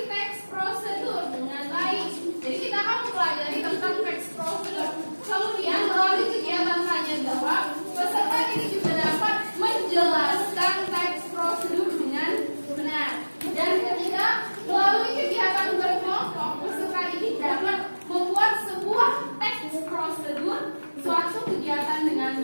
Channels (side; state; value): both; inverted; correlation -1.00